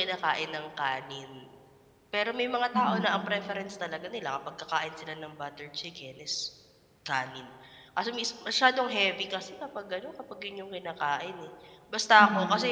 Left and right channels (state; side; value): identical; both; correlation 1.00